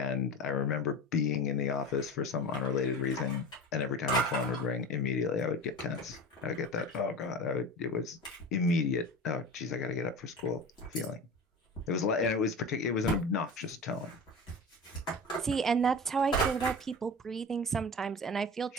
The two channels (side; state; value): both; normal; correlation 0.31